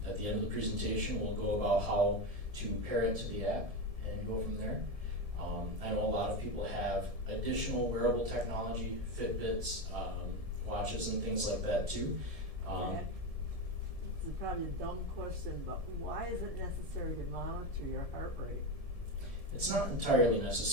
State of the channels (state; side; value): late; left; 1.7 ms